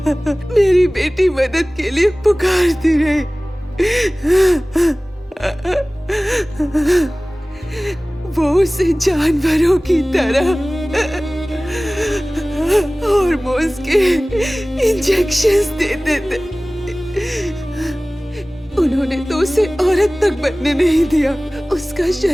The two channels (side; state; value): both; normal; correlation 0.98